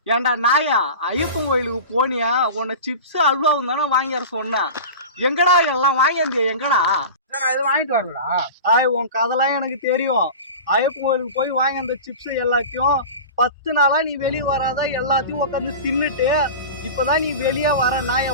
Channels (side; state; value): both; inverted; correlation -0.32